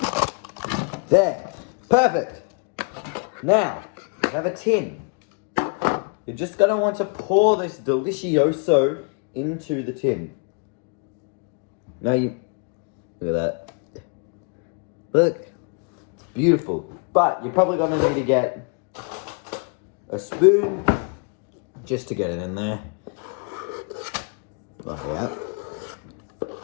There. Perfect. Now, we have a tin. You're just going to want to pour this Delicioso into the tin. Now look at that. Look, it's beautiful. But you're probably going to need to get a spoon just to get it in there. Like that.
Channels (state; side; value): quieter; right; 37.8 dB